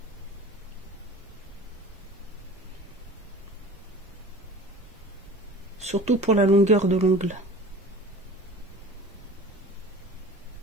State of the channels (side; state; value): both; normal; correlation 0.41